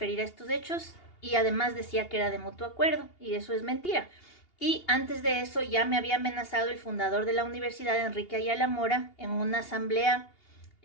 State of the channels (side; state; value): right; late; 2.8 ms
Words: a estos hechos y además decía que era de mutuo acuerdo y eso es mentira. Y antes de eso ya me había amenazado el fundador de la universidad, Enrique Ayala Mora, en una asamblea